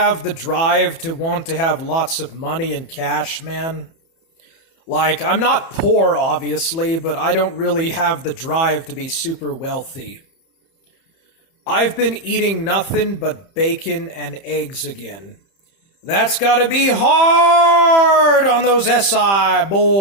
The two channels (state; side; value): late; right; 30 ms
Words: the drive to want to have lots of money and cash, man. Like, I'm not poor, obviously, but I don't really have the drive to be super wealthy. I've been eating nothing but bacon and eggs again. That's gotta be hard on those SI